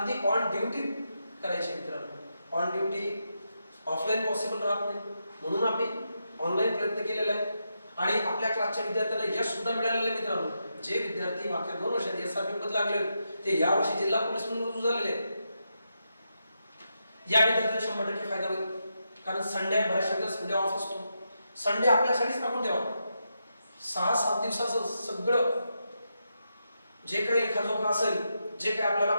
ती ऑन ड्युटी करायची आहे मित्रांनो. ऑन ड्युटी ऑफलाईन पॉसिबल राहत नाही, म्हणून आम्ही ऑनलाईन प्रयत्न केलेला आहे. आणि आपल्या क्लासच्या विद्यार्थ्यांना यश सुद्धा मिळालेलं आहे मित्रांनो. जे विद्यार्थी मागच्या 2 वर्षात SRP मध्ये लागले ते यावर्षी जिल्हा पोलीस म्हणून रुजू झालेले आहेत. या विद्यार्थ्यांना 100% फायदा होईल. कारण संडे, बऱ्याचशा संडे ऑफ असतो. संडे आपल्यासाठीच टाकून द्यावा. 6-7 दिवसाचं सगळं जे काही लेखाजोखा असेल, जे काही आपल्याला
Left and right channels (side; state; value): both; inverted; correlation -0.85